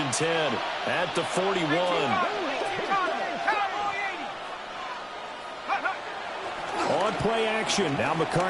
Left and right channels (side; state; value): both; identical; correlation 1.00